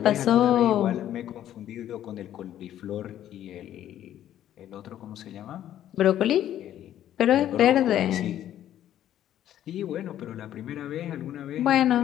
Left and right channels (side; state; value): right; quieter; 11.6 dB